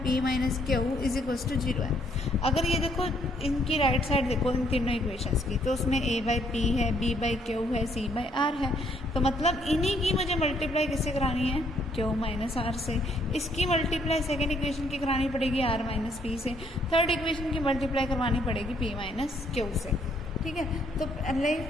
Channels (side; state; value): both; normal; correlation 0.68